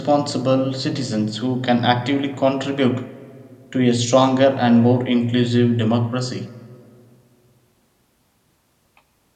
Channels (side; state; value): both; identical; correlation 1.00